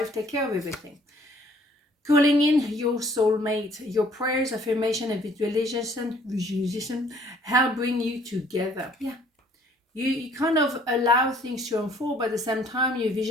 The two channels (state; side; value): normal; both; correlation 0.59